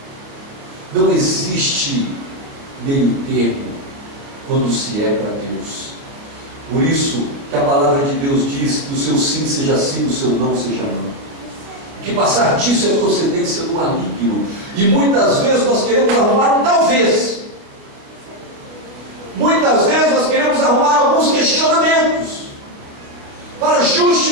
Não existe meio termo quando se é para Deus. Por isso que a palavra de Deus diz que o seu sim seja sim, o seu não seja não. Que passar disso é procedência do maligno. E muitas vezes nós queremos arrumar um talvez. Muitas vezes nós queremos arrumar alguns questionamentos para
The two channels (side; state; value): left; late; 28 ms